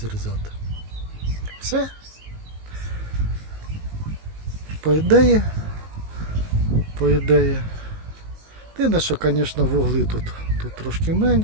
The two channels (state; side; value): late; left; 19 ms